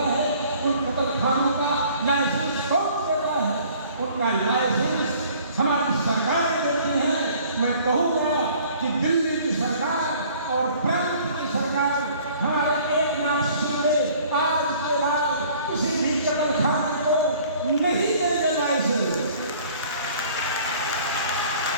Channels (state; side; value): inverted; both; correlation -0.53